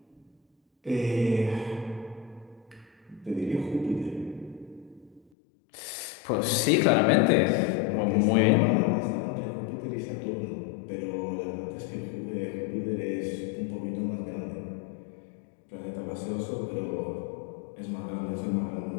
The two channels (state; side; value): drops out; right; at 5.2 s